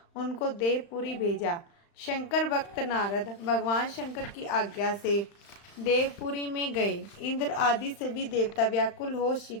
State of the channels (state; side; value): late; right; 35 ms